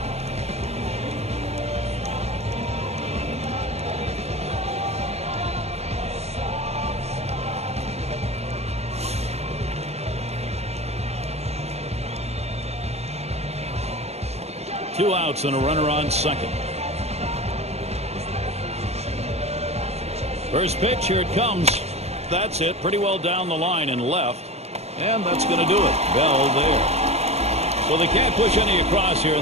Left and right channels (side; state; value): left; late; 0.31 ms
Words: Two outs and a runner on second. First pitch, here it comes. That's it. Pretty well down the line and left. And that's going to do it. Bell there. So they can't push any across here in